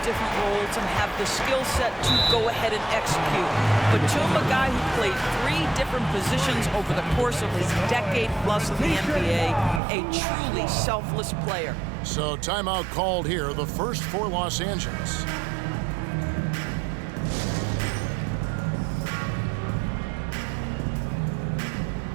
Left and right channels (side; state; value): left; drops out; at 9.8 s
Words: different roles and have the skill set to go ahead and execute. Batum, a guy who played 3 different positions over the course of his decade plus in the NBA, a truly selfless player. So timeout called here, the first for Los Angeles.